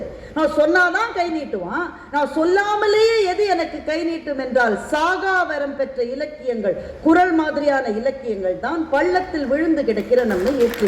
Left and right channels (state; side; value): identical; both; correlation 1.00